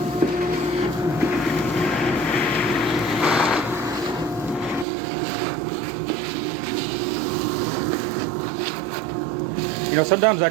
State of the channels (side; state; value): left; drops out; at 4.9 s